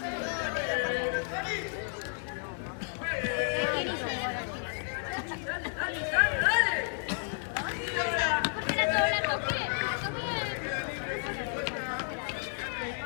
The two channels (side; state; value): right; silent; 56 dB below the other